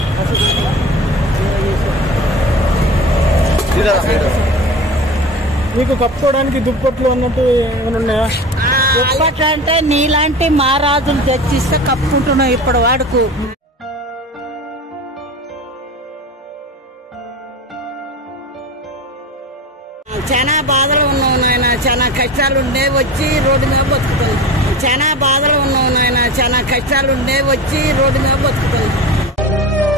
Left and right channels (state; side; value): normal; both; correlation 0.33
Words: మీకు కప్పుకోవడానికి దుప్పట్లు అన్నట్టు ఏమైనా ఉన్నాయా? దుప్పట్లు అంటే నీలాంటి మహారాజులు తెచ్చిస్తే కప్పుకుంటున్నాం ఇప్పటి వాడుకు. చాలా బాధలు ఉన్నావు నాయన, చాలా కష్టాలు ఉండే వచ్చి రోడ్డు మీద బతుకుతాను.